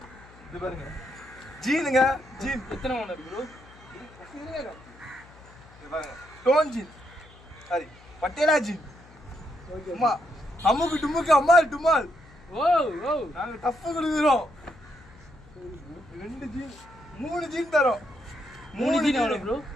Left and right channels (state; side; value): noise; left; hum, 23 dB below the sound